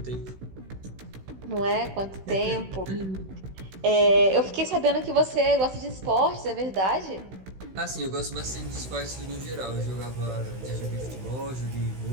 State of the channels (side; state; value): left; late; 16 ms